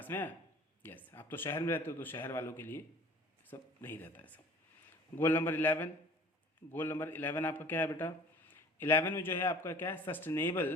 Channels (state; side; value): normal; both; correlation 0.47